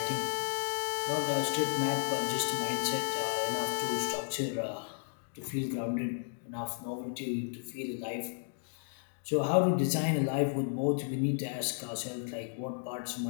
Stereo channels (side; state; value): right; silent; digital silence